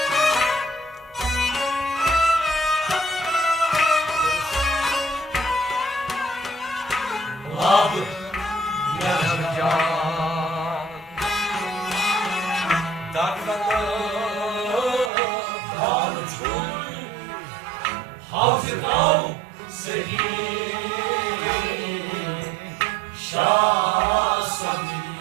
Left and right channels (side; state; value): left; drops out; at 15.1 s